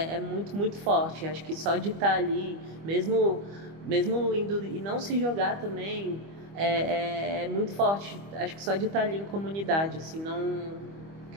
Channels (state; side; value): late; left; 25 ms